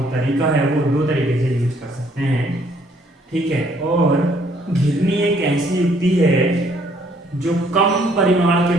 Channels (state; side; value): normal; both; correlation 0.65